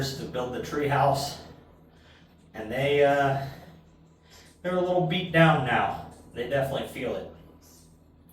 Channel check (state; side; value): identical; both; correlation 1.00